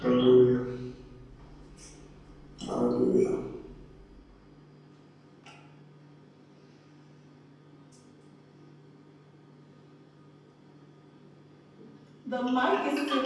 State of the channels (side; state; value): both; identical; correlation 1.00